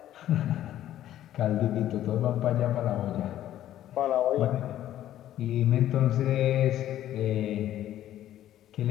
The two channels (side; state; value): right; quieter; 12.4 dB